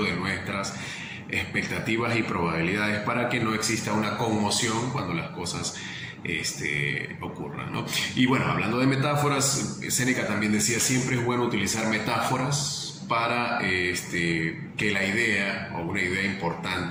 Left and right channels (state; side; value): identical; both; correlation 1.00